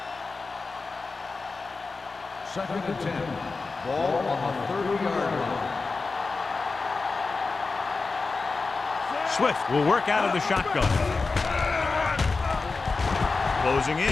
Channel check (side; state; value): right; quieter; 4.1 dB